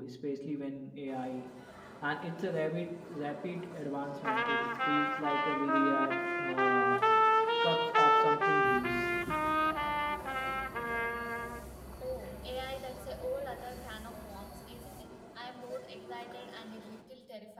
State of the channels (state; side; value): identical; both; correlation 1.00